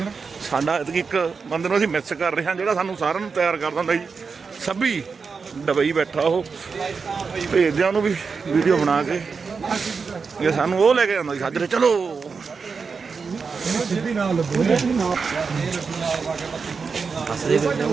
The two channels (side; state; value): left; quieter; 5.2 dB